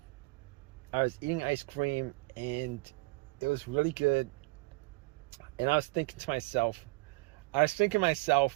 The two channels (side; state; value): left; quieter; 23.4 dB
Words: I was eating ice cream, and it was really good. And I was thinking to myself,